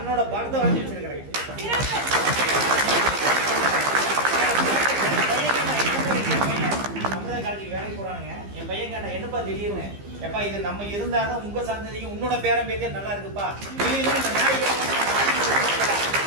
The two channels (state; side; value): late; left; 15 ms